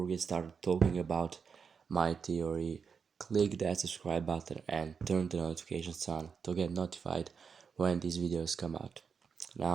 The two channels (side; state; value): left; quieter; 6.0 dB